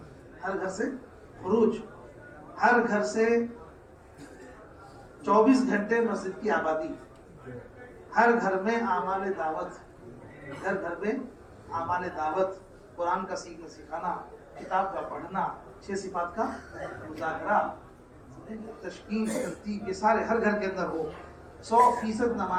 ہر گھر سے خروج، ہر گھر سے 24 گھنٹے مسجد کی آبادی، ہر گھر میں اعمال دعوت، ہر گھر میں اعمال دعوت، قرآن کا سیکھنا سکھانا، کتاب کا پڑھنا، 6 صفات کا مذاکرہ، تشکیل ترتیب، یہ سارے ہر گھر کے اندر ہو۔ 100%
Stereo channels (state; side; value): identical; both; correlation 1.00